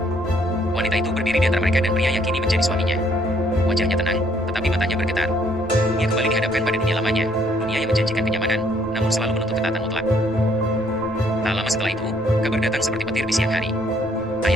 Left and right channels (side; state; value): both; normal; correlation 0.65